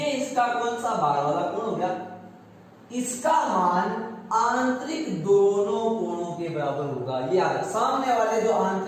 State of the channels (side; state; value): both; identical; correlation 1.00